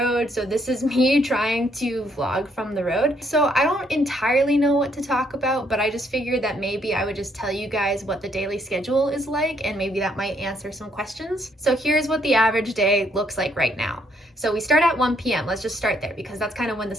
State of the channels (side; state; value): both; normal; correlation 0.70